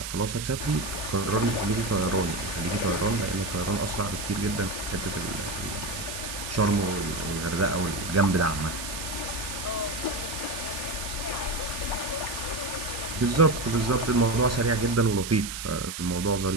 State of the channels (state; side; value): noise; right; hiss, 7 dB below the sound